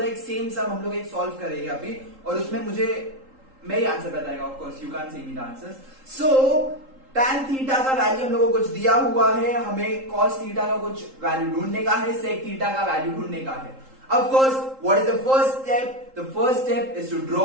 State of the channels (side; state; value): left; late; 3.8 ms